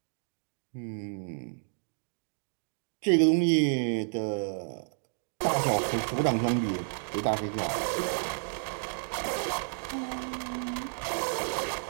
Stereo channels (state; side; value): silent; left; digital silence